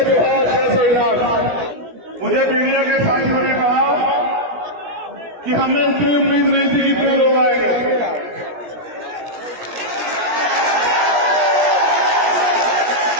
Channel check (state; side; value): late; left; 17 ms